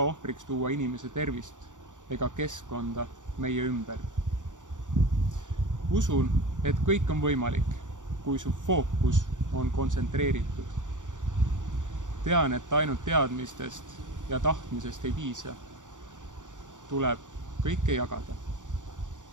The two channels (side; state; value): left; late; 0.86 ms